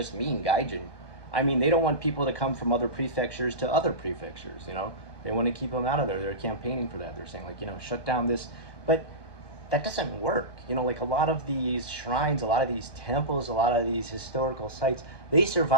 mean gaijin. I mean, they don't want people to come from other prefectures to other prefectures, They want to keep them out of there. They're campaigning for that. They're saying, like, shut down this. But that doesn't work. Like, a lot of these shrines, a lot of these temples, a lot of these historical sites, they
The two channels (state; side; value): late; right; 1.2 ms